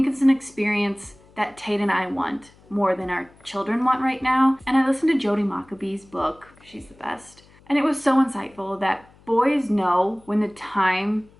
it's an experience that Tate and I want more than our children want right now. And I listened to Jody Maccabee's book. She's the best. And it was so insightful that boys know when the time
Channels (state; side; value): noise; left; hum, 28 dB below the sound